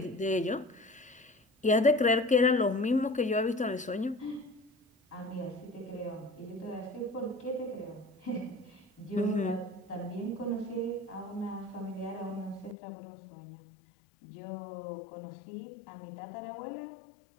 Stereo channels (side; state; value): right; drops out; at 12.8 s